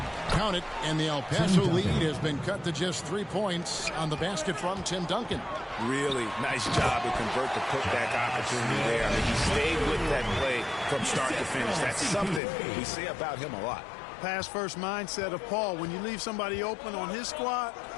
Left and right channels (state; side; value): drops out; right; at 12.4 s